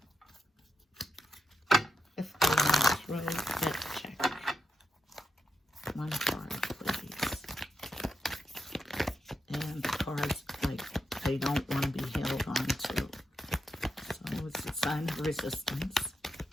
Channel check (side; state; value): both; normal; correlation 0.84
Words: Fifth Element Tarot F.E.T check. One card, please. And the cards, like, they don't want to be held on to. So it's a sign of resistance.